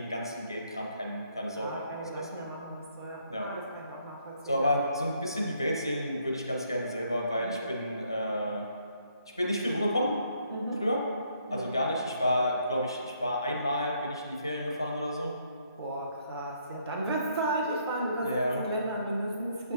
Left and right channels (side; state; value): both; inverted; correlation -0.70